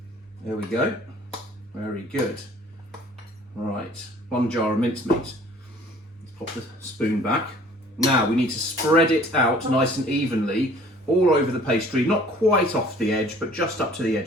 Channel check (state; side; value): normal; both; correlation 0.53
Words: There we go. Very good. Right, 1 jar of mincemeat. Let's pop the spoon back. Now we need to spread it out nice and evenly all over the pastry, not quite off the edge, but just up to the